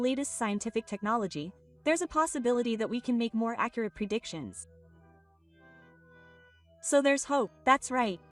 scientific technology, there's a possibility that we can make more accurate predictions. So there's hope. That's right.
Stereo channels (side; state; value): both; identical; correlation 1.00